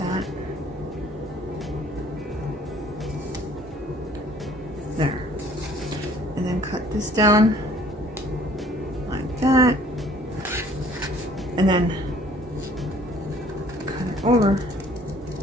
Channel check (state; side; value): normal; both; correlation 0.55